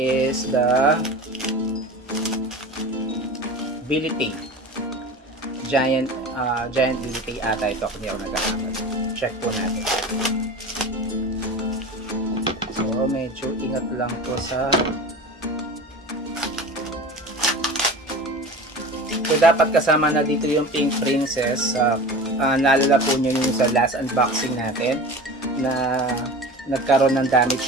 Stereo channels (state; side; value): normal; both; correlation 0.34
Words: the Bility. Giant Bility ata ito, kung hindi ako nagkakamali. Check po natin. So medyo ingat lang po sa So, dapat kasama na dito yung Pink Princess naalala po nyo yung sa last unboxing natin na nagkaroon ng